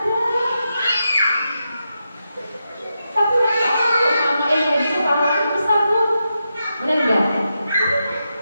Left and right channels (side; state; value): both; inverted; correlation -0.87